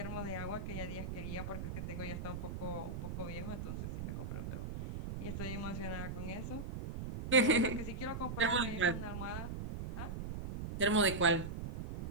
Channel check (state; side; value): noise; right; rumble, 5 dB below the sound